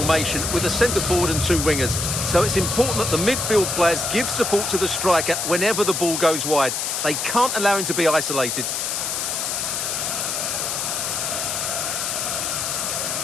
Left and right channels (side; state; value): left; noise; hiss, 1 dB below the sound